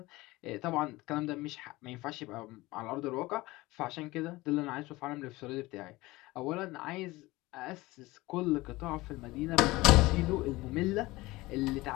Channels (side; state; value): right; quieter; 20.2 dB